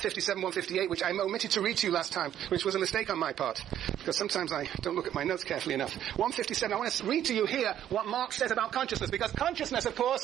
158, which I omitted to read to you last time, which was a mistake on my part, because sometimes I don't look at my notes carefully enough. 157, I want to read to you here what Marx says about consciousness, because consciousness, of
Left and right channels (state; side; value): quieter; left; 11.0 dB